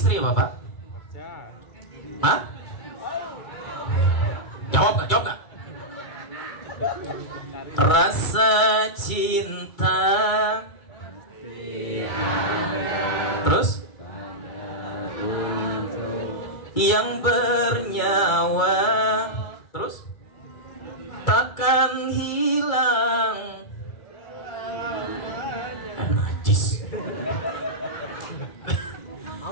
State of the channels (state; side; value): late; right; 2.3 ms